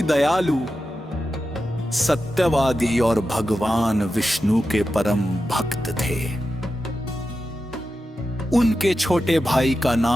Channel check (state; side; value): normal; both; correlation 0.91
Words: दयालु, सत्यवादी और भगवान विष्णु के परम भक्त थे। उनके छोटे भाई का